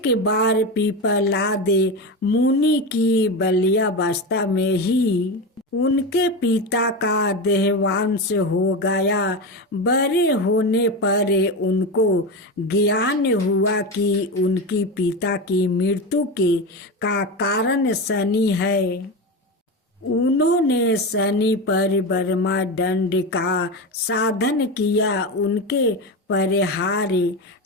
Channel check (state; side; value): normal; both; correlation 0.19